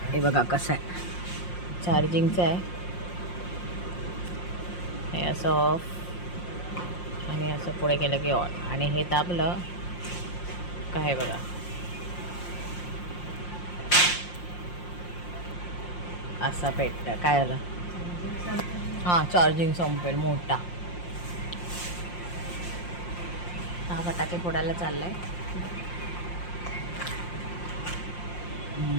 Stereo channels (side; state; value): right; late; 5.7 ms